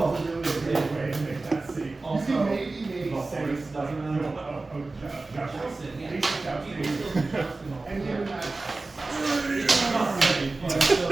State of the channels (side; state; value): left; quieter; 3.4 dB